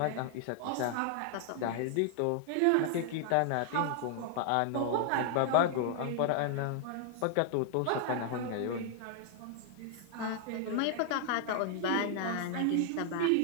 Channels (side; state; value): both; different; correlation 0.00